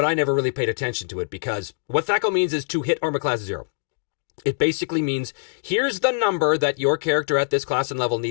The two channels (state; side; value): silent; right; digital silence